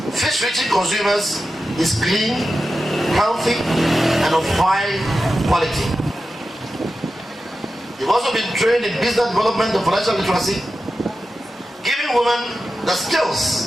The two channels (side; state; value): both; normal; correlation 0.92